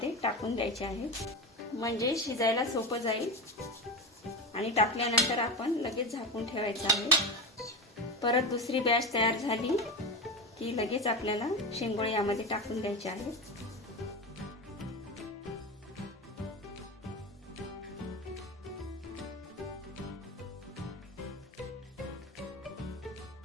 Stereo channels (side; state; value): both; normal; correlation 0.22